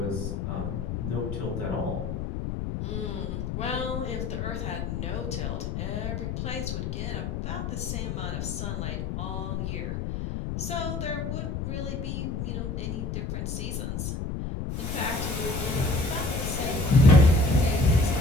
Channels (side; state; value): left; noise; rumble, 3 dB below the sound